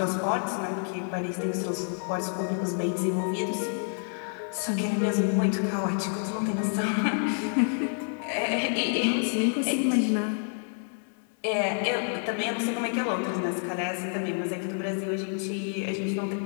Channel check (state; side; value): silent; right; 57 dB below the other